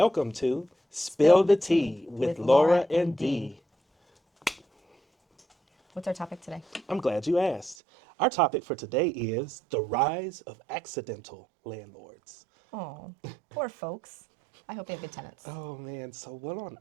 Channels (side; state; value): left; drops out; at 7.8 s